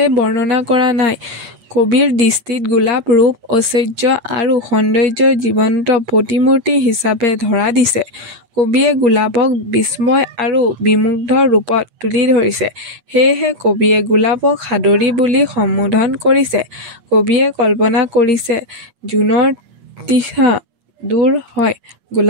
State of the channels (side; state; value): left; late; 8.6 ms